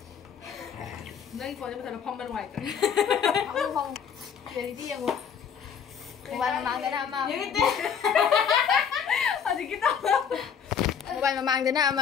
Đây có cho nó phong bên ngoài. Không không. Để đi em một. Một bài mà mang cái nào mà. Những cái tên. À thì cái tao. Một bài mà mang cái nào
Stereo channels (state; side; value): quieter; right; 7.4 dB